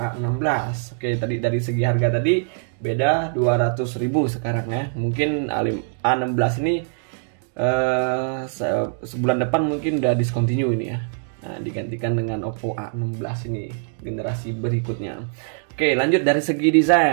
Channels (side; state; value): left; silent; digital silence